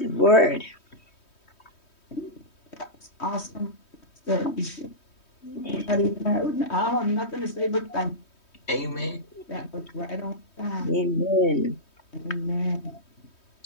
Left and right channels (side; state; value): right; late; 3.2 ms